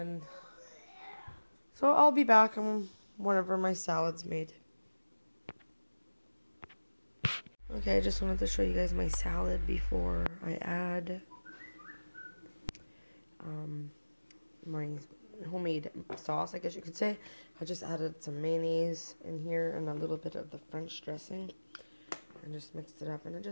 so I'll be back whenever my salad's made. Okay, I just wanted to show you guys my salad before I add my homemade sauce, I guess you could say. I just added some mayonnaise in here and a little bit of the French dressing and just mixed it up, and it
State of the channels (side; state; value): both; inverted; correlation -1.00